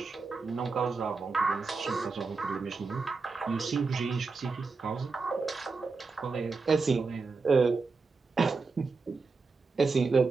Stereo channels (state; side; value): quieter; left; 4.3 dB